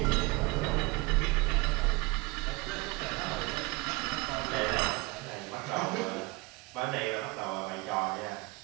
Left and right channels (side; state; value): left; quieter; 24.0 dB